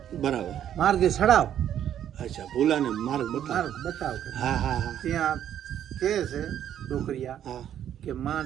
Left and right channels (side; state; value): left; quieter; 10.4 dB